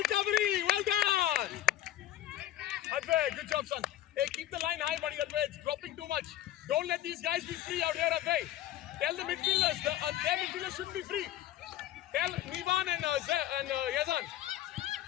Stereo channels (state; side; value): quieter; right; 13.2 dB